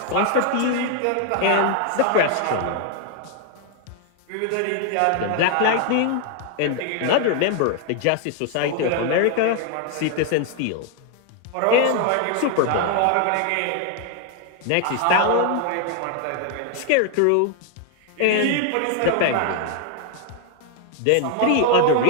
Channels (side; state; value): both; different; correlation 0.00